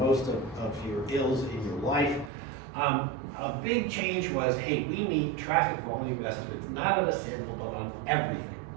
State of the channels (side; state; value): left; drops out; at 2.3 s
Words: most of your ills in your life. A big change was, hey, we need traffic volume estimates, not on a sample, but on everything.